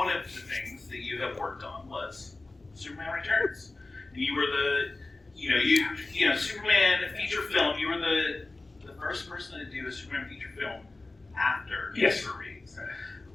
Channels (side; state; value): right; quieter; 3.2 dB